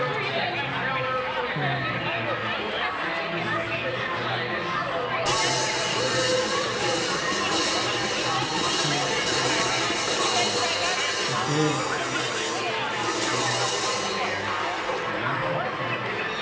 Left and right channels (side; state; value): both; identical; correlation 1.00